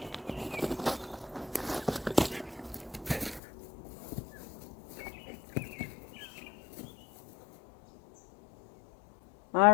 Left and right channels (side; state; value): right; drops out; at 3.4 s